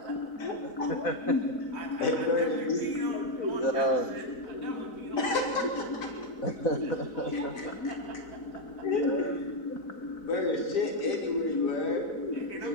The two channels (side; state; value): right; late; 4.0 ms